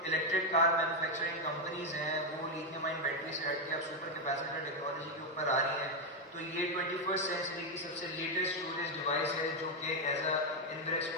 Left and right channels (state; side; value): normal; both; correlation 0.04